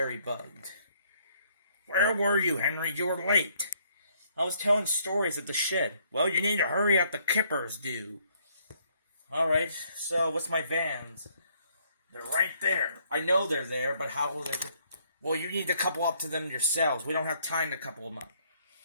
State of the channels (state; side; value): inverted; both; correlation -0.67